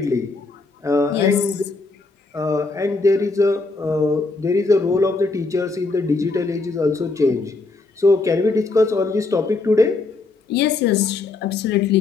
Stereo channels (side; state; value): right; quieter; 3.6 dB